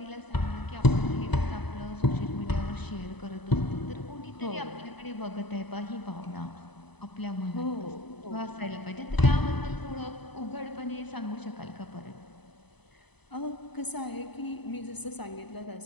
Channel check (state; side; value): late; right; 0.99 ms